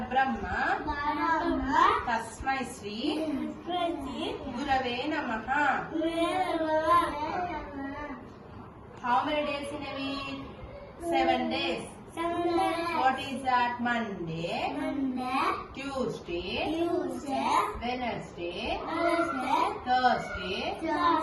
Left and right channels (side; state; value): both; identical; correlation 1.00